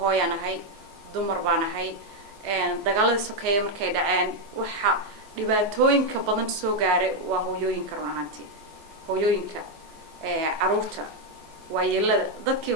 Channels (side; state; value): left; late; 14 ms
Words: hooyanahay dumar baanahay dagaaladii sokeeye markay dhaceen waxa dhibaatooyinka badan soo gaaray waa hooyooyinka run ahaantii hooyooyinka caruurta waayeelada dadkii